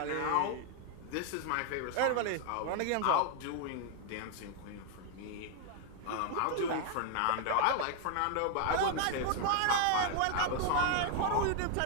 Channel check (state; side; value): different; both; correlation 0.00